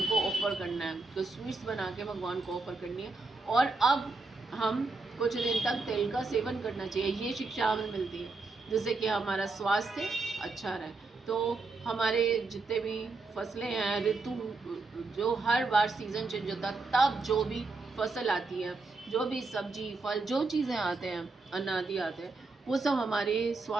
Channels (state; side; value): quieter; left; 3.7 dB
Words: को ऑफर करना है, तो स्वीट्स बना के भगवान को ऑफर करनी है। और अब हम कुछ दिन तक तिल का सेवन करना चाहिए, ये शिक्षा हमें मिलती है, जिससे कि हमारा स्वास्थ्य अच्छा रहे। तो हमारे जितने भी फसलें हैं, ऋतु जो हर बार सीज़न चेंज होता है, तब जो भी फसल आती है, जो भी सब्जी फल जो चीज़ें आते हैं, अन्न आदि आते हैं, वो सब हमारे